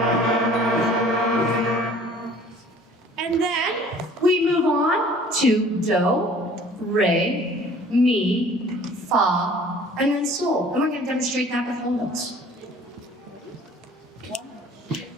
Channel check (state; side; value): normal; both; correlation 0.51